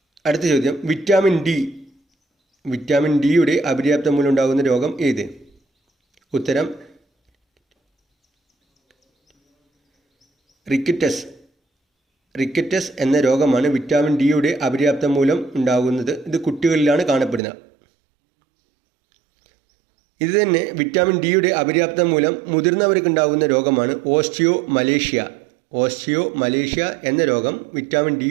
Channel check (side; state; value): left; drops out; at 17.4 s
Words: അടുത്ത ചോദ്യം, വിറ്റാമിൻ ഡിയുടെ അപര്യാപ്തത മൂലമുണ്ടാകുന്ന രോഗം ഏത്? ഉത്തരം റിക്കറ്റസ് എന്ന രോഗമാണ് വിറ്റാമിൻ ഡിയുടെ അപര്യാപ്തത മൂലം ഉണ്ടാകുന്നത്. ഇത് കുട്ടികളിലാണ് കാണപ്പെടുന്നത്. ഇത് തന്നെ വിറ്റാമിൻ ഡിയുടെ അപര്യാപ്തത മൂലം മുതിർന്നവർക്ക് ഉണ്ടാകുന്ന രോഗമാണ് ഓസ്റ്റിയോമലേഷ്യ എന്ന രോഗം വിറ്റാമിൻ